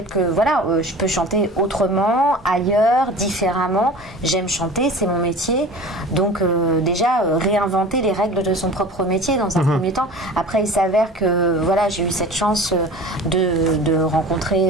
que, voilà, je peux chanter autrement, ailleurs, différemment. J'aime chanter, c'est mon métier. Donc, déjà, réinventer les règles de son propre métier dans un premier temps. Après, il s'avère que, voilà, j'ai eu cette chance de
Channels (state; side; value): normal; both; correlation 0.39